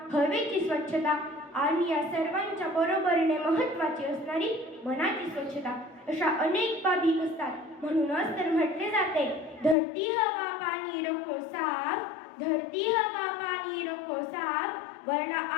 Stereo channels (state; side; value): drops out; right; at 9.8 s